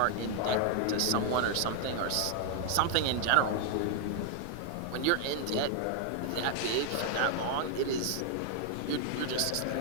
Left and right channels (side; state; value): both; different; correlation 0.00